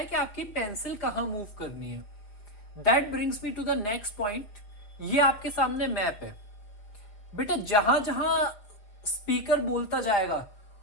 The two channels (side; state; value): right; late; 4.9 ms